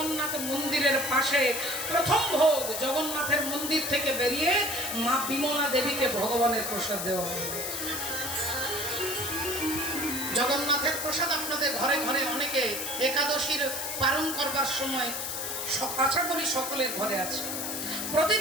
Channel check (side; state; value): left; noise; hiss, 4 dB below the sound